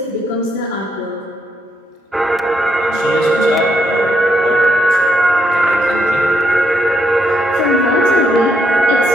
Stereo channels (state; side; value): normal; both; correlation 0.76